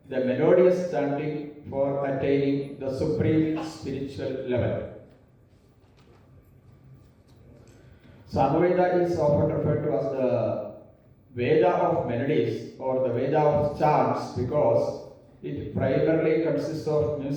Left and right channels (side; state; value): both; identical; correlation 1.00